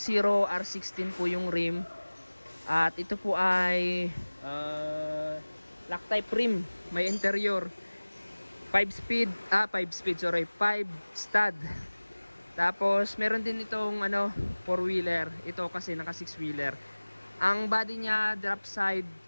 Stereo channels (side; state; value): both; inverted; correlation -1.00